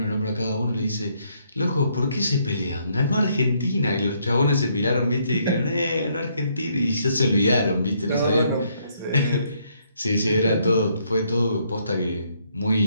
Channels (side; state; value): both; inverted; correlation -0.71